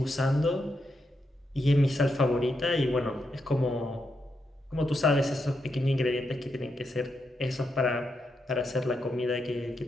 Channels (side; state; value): both; normal; correlation 0.83